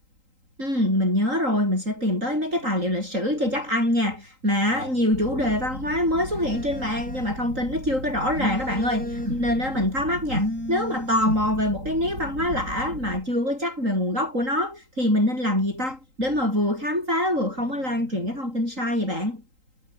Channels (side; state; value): left; late; 3.8 ms